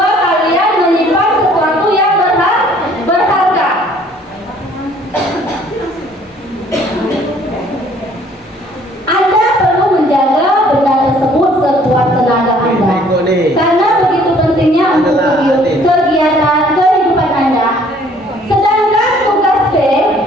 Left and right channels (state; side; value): normal; both; correlation 0.58